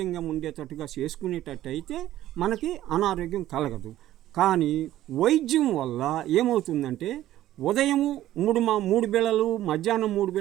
ఉండేటట్టుగా చేసుకునేటట్టు అయితే మనకి అనారోగ్యం కలగదు. కానీ వైద్యం వల్ల ఏమవుతుందంటే ఉదయము 3 బిళ్ళలు, మధ్యాహ్నం 3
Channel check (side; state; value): left; quieter; 13.7 dB